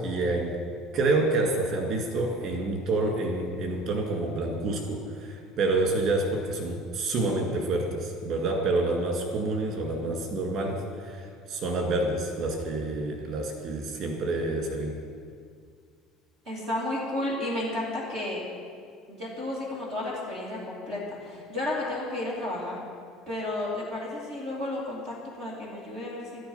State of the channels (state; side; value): normal; both; correlation 0.46